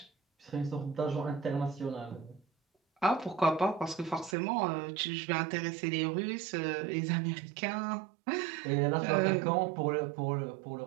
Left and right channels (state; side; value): drops out; left; at 4.4 s